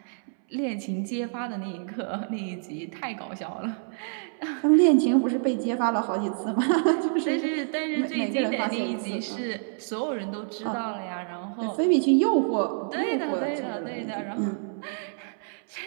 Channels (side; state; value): left; silent; 60 dB below the other